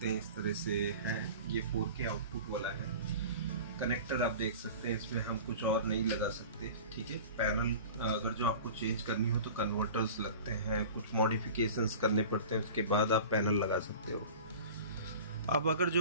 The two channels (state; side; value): inverted; both; correlation -0.38